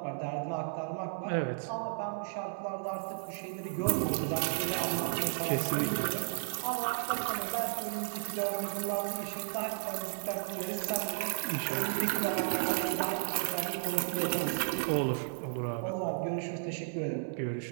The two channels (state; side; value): silent; left; 55 dB below the other